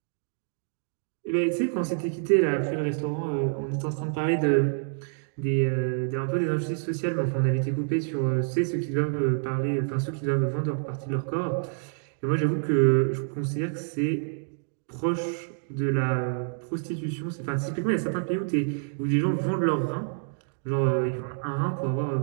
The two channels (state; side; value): silent; left; digital silence